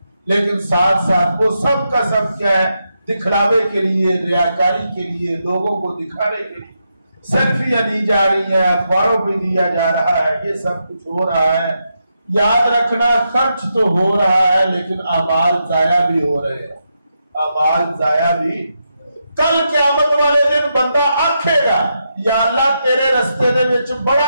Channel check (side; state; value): both; inverted; correlation -0.84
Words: لیکن ساتھ ساتھ وہ سب کا سب کیا ہے؟ دکھلاوے کے لیے، ریاکاری کے لیے، لوگوں کو دکھانے کے لیے، سیلفیاں دی جا رہی ہیں، اخباروں پہ دیا جا رہا ہے، یہ سب کچھ ہو رہا ہے۔ یاد رکھنا، خرچ تو ہو رہا ہے لیکن اعمال ضائع بھی ہو رہے ہیں، اعمال ضائع بھی۔ کل قیامت والے دن بندہ آکھے گا یا اللہ تیرے رستے دے وچ